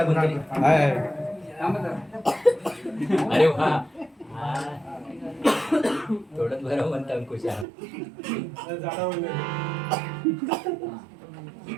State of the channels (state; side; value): drops out; left; at 7.7 s